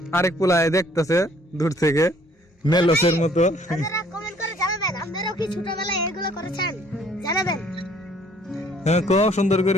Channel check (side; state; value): both; normal; correlation 0.60